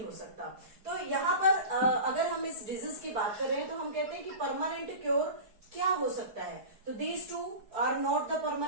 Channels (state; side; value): late; left; 4.7 ms